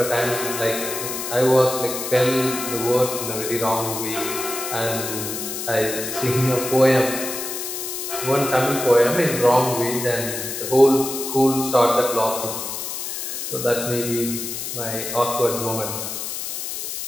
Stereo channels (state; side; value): noise; left; hiss, 5 dB below the sound